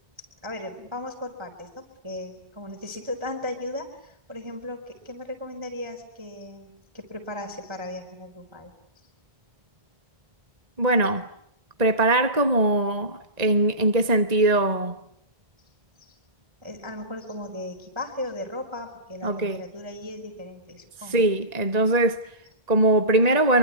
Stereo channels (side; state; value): left; late; 1.9 ms